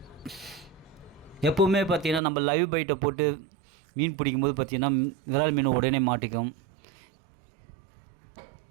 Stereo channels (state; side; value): drops out; left; at 2.2 s